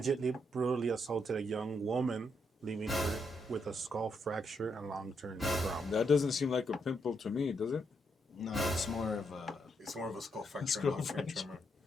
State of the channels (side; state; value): both; normal; correlation 0.78